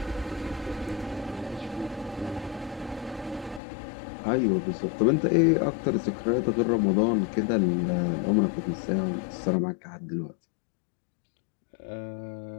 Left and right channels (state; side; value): drops out; right; at 3.6 s